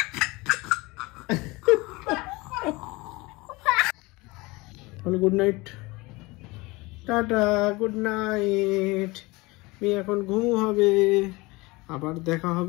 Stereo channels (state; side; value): quieter; right; 23.2 dB